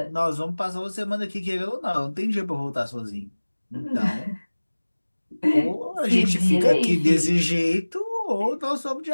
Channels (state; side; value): inverted; both; correlation -1.00